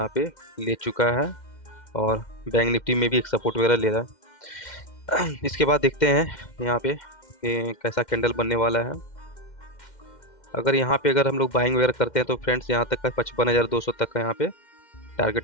पे ले चुका है, और बैंक निफ्टी में भी एक सपोर्ट वगैरह ले रहा है। इसके बाद देखते हैं यहाँ पे कि कैसा कैंडल बनने वाला है। अगर यहाँ पे अगर हम लोग बाइंग वगैरह करते हैं तो फ्रेंड्स यहाँ तक का 55,200 तक का यहाँ पे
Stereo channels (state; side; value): late; right; 2.1 ms